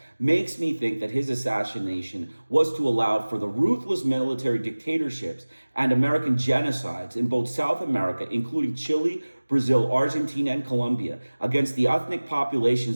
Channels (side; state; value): both; inverted; correlation -1.00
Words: makes me think that his assassination was to allow for the ruthless military dictatorships and American genocides in both South America, including Chile, Brazil, Argentina, and Colombia, against the ethnic